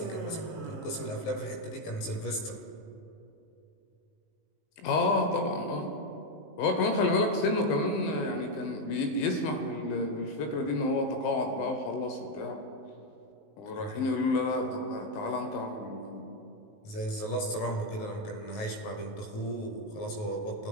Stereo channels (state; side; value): late; right; 19 ms